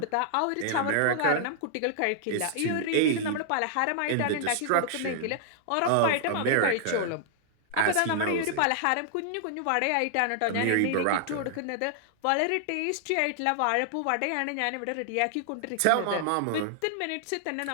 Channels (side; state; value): both; different; correlation -0.01